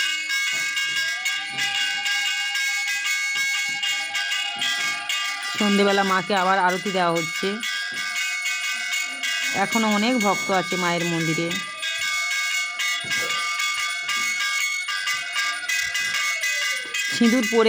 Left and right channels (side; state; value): both; identical; correlation 1.00